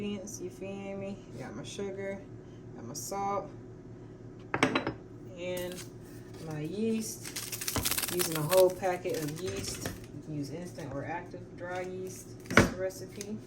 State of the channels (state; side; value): identical; both; correlation 1.00